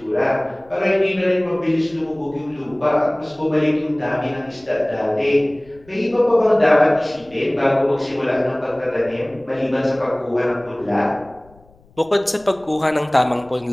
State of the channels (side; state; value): left; noise; rumble, 28 dB below the sound